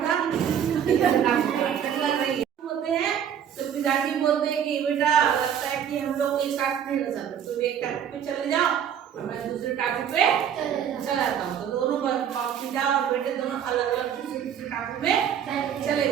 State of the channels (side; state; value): left; quieter; 9.0 dB